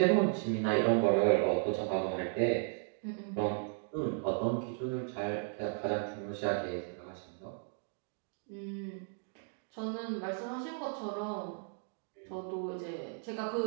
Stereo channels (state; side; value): silent; left; 54 dB below the other